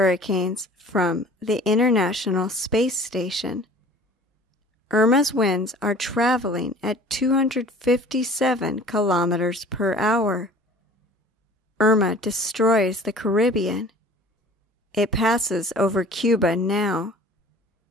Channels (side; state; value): both; normal; correlation 0.46